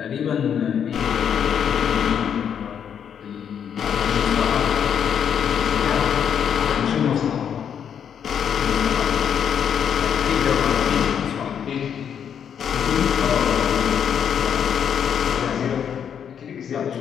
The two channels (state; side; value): quieter; right; 8.2 dB